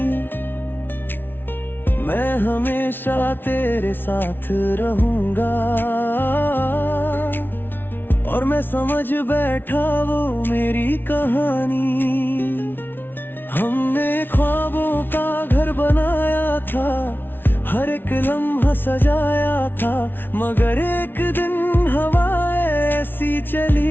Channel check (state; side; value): late; right; 0.10 ms